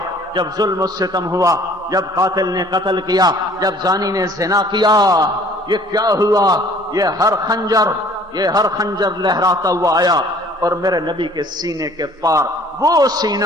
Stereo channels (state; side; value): normal; both; correlation 0.54